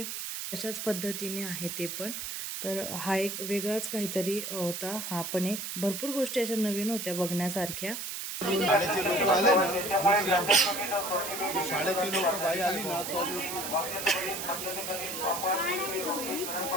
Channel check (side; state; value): right; noise; hiss, 5 dB below the sound